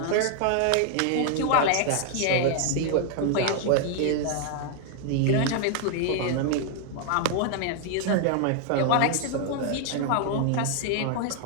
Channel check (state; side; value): different; both; correlation 0.00